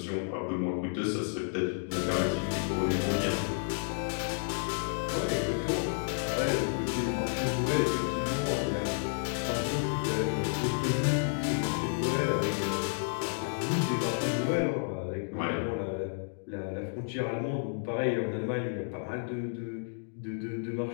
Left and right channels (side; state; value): right; silent; digital silence